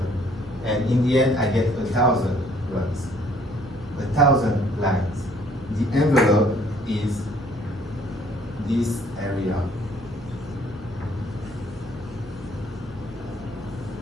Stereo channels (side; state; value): both; normal; correlation 0.61